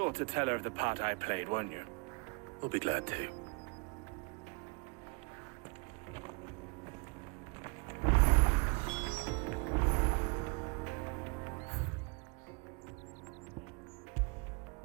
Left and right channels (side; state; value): left; quieter; 31.4 dB